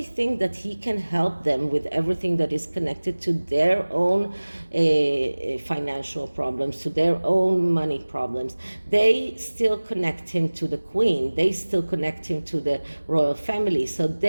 think that he can help them with everything that is connected to their own financial problems, to their own money problems. They still connect him to the Queen. They still connect him to the royal family. So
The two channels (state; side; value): inverted; both; correlation -1.00